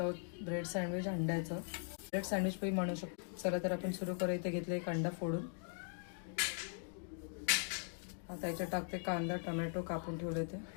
आहोत ब्रेड सँडविच अंड्याचं. ब्रेड सँडविच पण म्हणू शकतो. चला तर आपण सुरू करू. इथे घेतले एक अंडा फोडून. आता याच्यात टाकते कांदा टोमॅटो कापून ठेवले ते.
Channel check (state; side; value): silent; right; 51 dB below the other